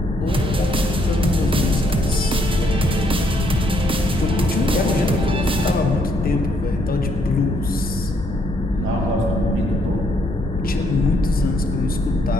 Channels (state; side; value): normal; both; correlation 0.71